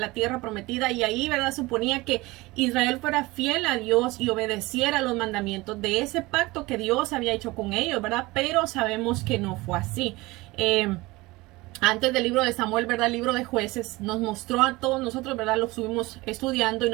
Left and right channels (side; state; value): left; quieter; 21.4 dB